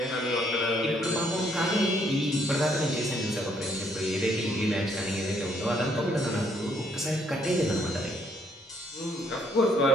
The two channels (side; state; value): both; normal; correlation 0.69